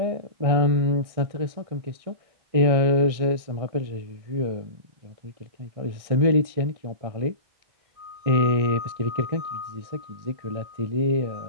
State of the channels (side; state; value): left; late; 1.6 ms